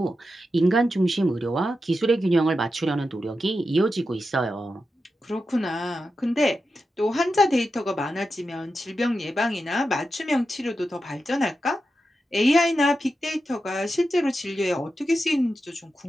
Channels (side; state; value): both; normal; correlation 0.89